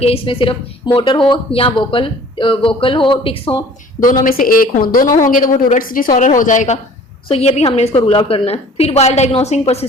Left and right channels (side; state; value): both; normal; correlation 0.49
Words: इसमें सिर्फ मोटर हो या वोकल हो, टिक्स हो, दोनों में से एक हो। दोनों होंगे तो वो टूरेट्स डिसऑर्डर हो जाएगा। सो ये भी हमने इसको रूल आउट करना है। फिर while diagnosing